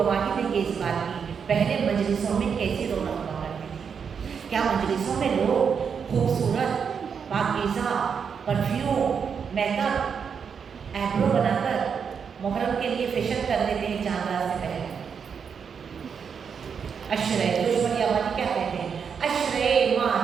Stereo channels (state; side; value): quieter; left; 6.6 dB